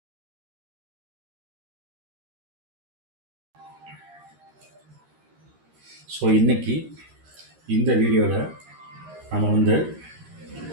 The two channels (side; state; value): left; late; 13 ms